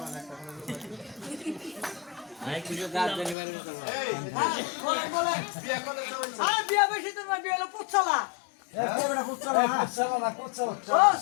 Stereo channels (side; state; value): right; drops out; at 3.4 s